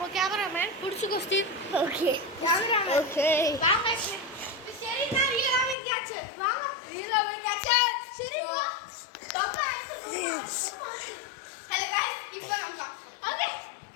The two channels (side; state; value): right; drops out; at 5.8 s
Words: கேமராமேன் புடிச்சுக்கோ ஸ்டீவ் ஓகே கேமராமேன் ஓகே வாங்க சரி நான் ரீலாவே கேட்ச் வாங்க ரீலாவே கேட்ச் சரி தப்பா ஹலோ गाइस இப்போ நம்ம ஓகே